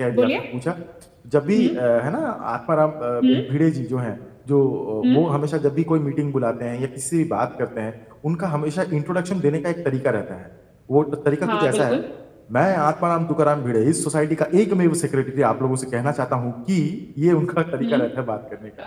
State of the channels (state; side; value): identical; both; correlation 1.00